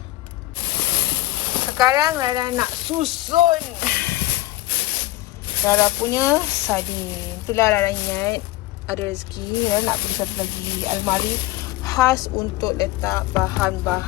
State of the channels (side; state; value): right; quieter; 17.1 dB